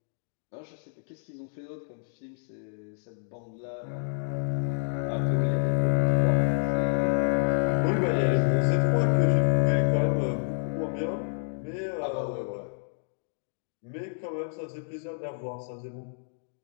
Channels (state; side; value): silent; right; digital silence